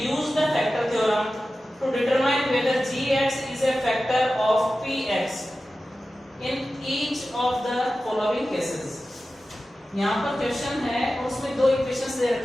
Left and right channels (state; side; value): normal; both; correlation 0.94